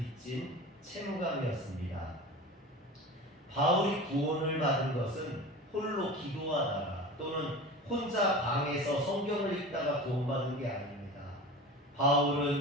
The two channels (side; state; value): both; normal; correlation 0.33